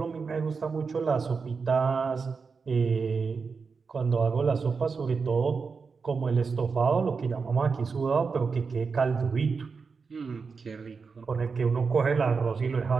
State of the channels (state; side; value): quieter; left; 5.1 dB